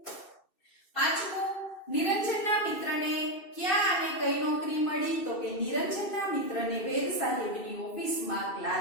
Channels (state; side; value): late; right; 2.6 ms